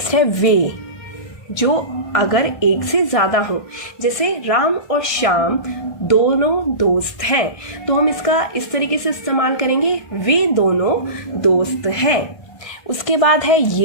है वे, जो अगर एक से ज़्यादा हो, जैसे राम और श्याम दोनों दोस्त हैं, तो हम इसका इस तरीके से इस्तेमाल करेंगे, वे दोनों दोस्त हैं। उसके बाद है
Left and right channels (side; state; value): right; late; 1.5 ms